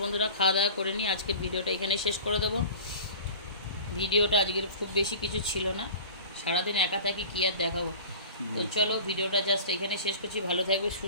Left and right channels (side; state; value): both; inverted; correlation -0.40